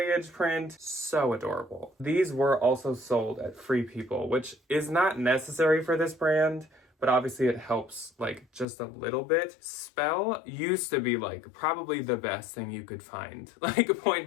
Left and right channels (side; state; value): right; drops out; at 8.7 s